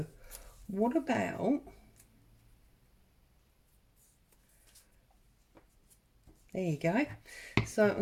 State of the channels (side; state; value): both; identical; correlation 1.00